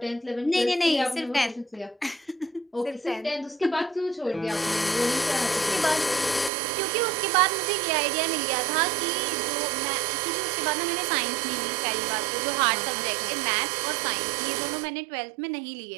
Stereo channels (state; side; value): drops out; left; at 6.5 s